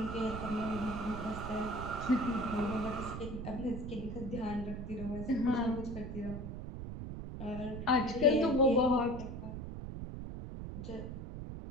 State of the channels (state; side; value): noise; right; rumble, 7 dB below the sound